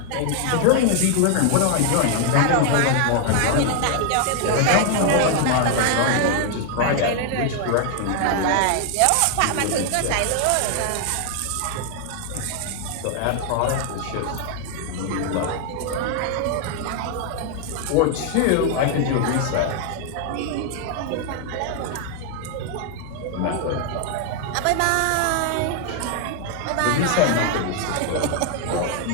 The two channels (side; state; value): both; different; correlation 0.00